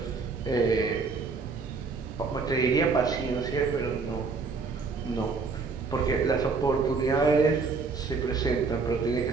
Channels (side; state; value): left; quieter; 4.5 dB